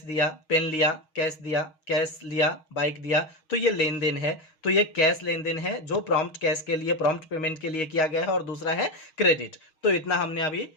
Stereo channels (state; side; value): late; right; 6.4 ms